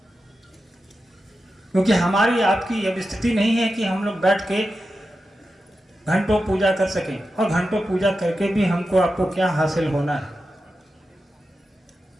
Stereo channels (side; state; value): both; normal; correlation 0.91